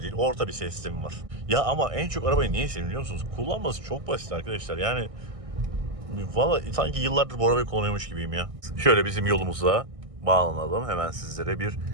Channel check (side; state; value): left; late; 1.6 ms